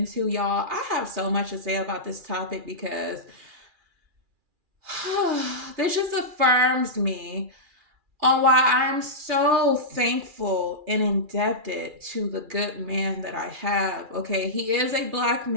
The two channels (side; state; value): left; late; 2.4 ms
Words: y'all. I have so much to say about this topic because this just affirms me on why I'm so thankful and indebted to the good man that I have. Okay, he is a black